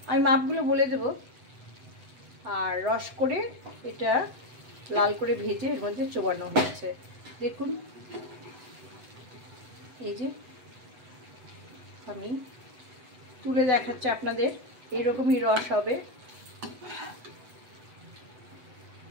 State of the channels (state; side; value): late; left; 8.0 ms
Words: আমি মাপগুলো বলে দেব। আর রস করে এটা লাল করে ভেজে এর মধ্যে চোবানো হয়েছে। দেখুন, এই যে আমি তুলে দেখাচ্ছি আপনাদের, এরকমই রস হবে।